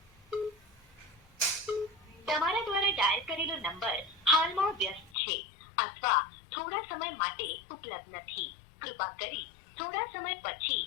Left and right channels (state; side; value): drops out; right; at 5.2 s